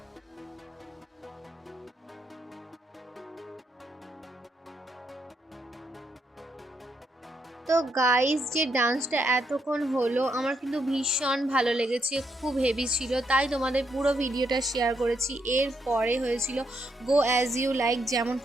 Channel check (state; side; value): normal; both; correlation 0.78